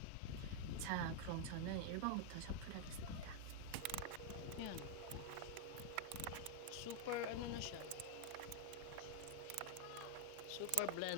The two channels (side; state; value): both; different; correlation 0.00